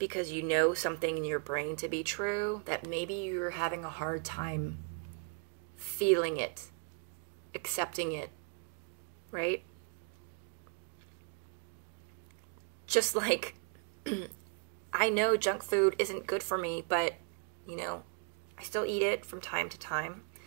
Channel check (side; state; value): left; quieter; 39.7 dB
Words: you know something in your brain to be true, that maybe you're having a hard time feeling it, accepting it, right? Just like, I know junk food isn't good for me, but, you know, I still eat it from time to time.